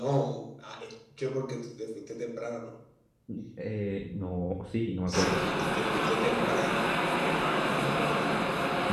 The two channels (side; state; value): both; identical; correlation 1.00